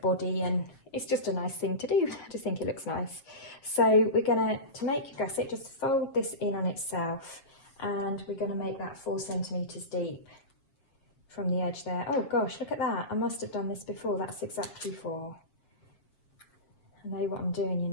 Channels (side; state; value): right; late; 7.6 ms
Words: body, and it's just a nice thing to do. I just think it looks nice. So we're going to make a gusset, just fold this in on itself, and we're going to make that 4 centimetres deep from the edge there. Oh gosh, look at that. I must have done this before. That's exactly 4. I know what I'm doing, you